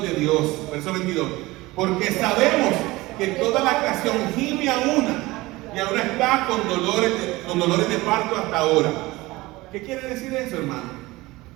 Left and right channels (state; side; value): quieter; left; 20.3 dB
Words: de Dios. Verso 22. Porque sabemos que toda la creación gime a una y ahora está con dolores de parto hasta ahora. ¿Qué quiere decir eso, hermano?